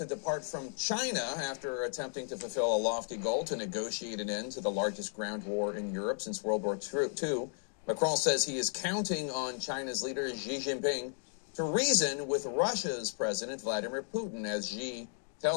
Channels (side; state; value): right; silent; 55 dB below the other